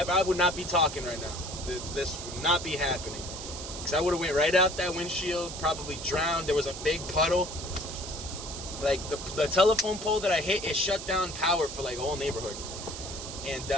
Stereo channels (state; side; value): noise; right; hiss, 9 dB below the sound